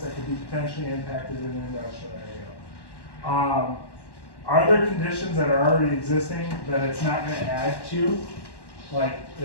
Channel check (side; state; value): right; late; 1.1 ms